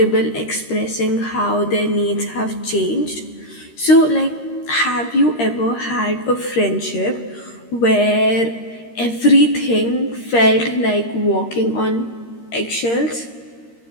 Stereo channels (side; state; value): right; late; 13 ms